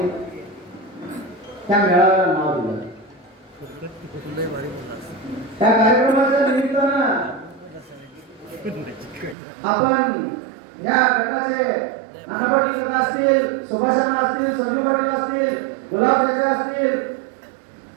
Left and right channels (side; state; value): left; drops out; at 9.3 s